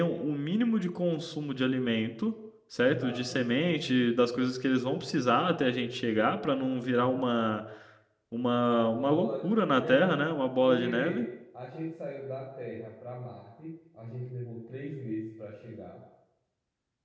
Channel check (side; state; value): both; identical; correlation 1.00